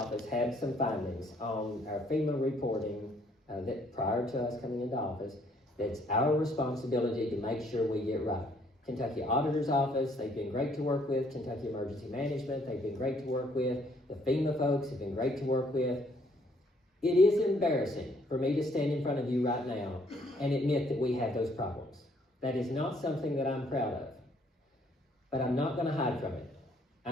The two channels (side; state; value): both; normal; correlation 0.65